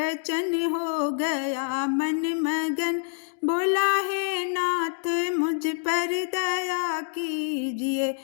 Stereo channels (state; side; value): silent; right; 61 dB below the other